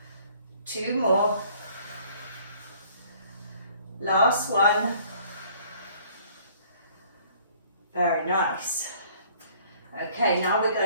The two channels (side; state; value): both; inverted; correlation -0.57